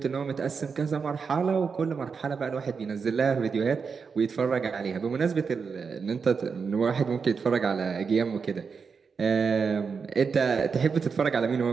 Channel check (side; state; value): left; quieter; 5.6 dB